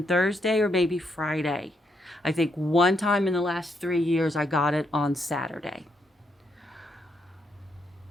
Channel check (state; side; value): normal; both; correlation 0.78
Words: Thursday or maybe Friday. I think one time in the last 3 years I got it on Saturday.